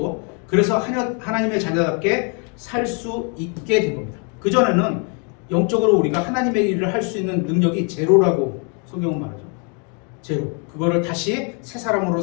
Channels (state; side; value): quieter; right; 37.3 dB